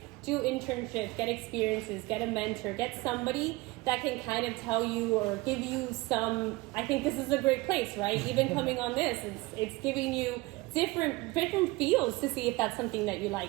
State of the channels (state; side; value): quieter; left; 21.9 dB